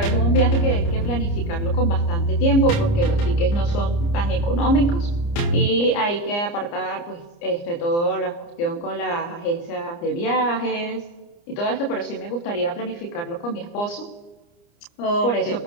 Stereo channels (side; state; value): right; late; 29 ms